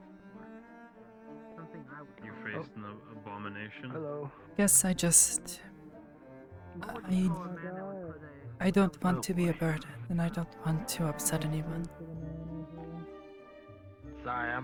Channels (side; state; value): both; identical; correlation 1.00